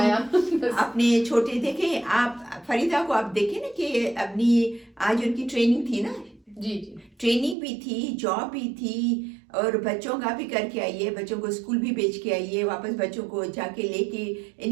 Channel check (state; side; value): drops out; left; at 7.6 s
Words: अपने छोटे देखे आप फरीदा को, आप देखे ना कि अपनी आज उनकी ट्रेनिंग थी ना, जी ट्रेनिंग भी थी, जॉब भी थी, और बच्चों का भी करके आई है, बच्चों को स्कूल भी भेज के आई है, वापस बच्चों को जाके लेके,